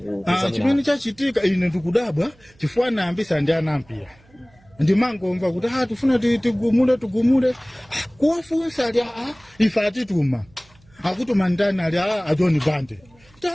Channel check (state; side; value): noise; right; hum, 30 dB below the sound